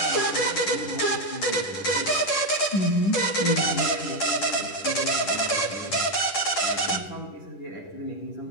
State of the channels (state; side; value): late; right; 10 ms